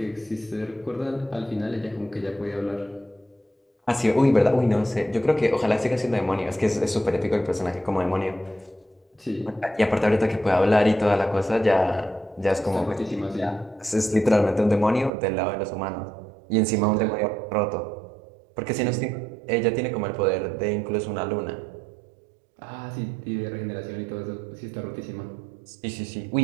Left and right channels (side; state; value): left; drops out; at 15.1 s